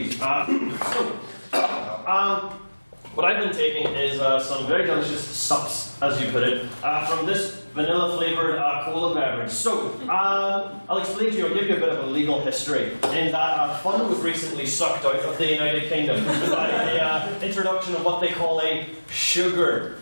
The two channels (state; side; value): inverted; both; correlation -1.00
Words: What I've been taking is some very delicious sups, as you put it, from this vanilla-flavoured cola beverage. So, I'll explain to you, I'll give you a bit of a legal history, in that fun was recently sucked out of the United Kingdom by the introduction of what they call a sugar